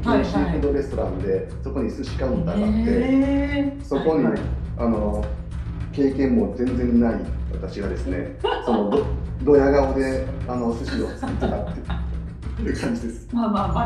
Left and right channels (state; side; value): identical; both; correlation 1.00